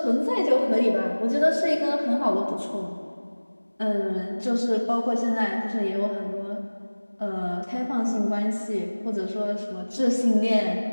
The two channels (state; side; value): inverted; both; correlation -1.00